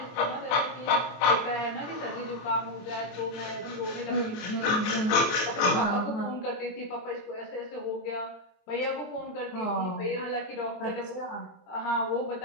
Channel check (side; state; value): right; late; 24 ms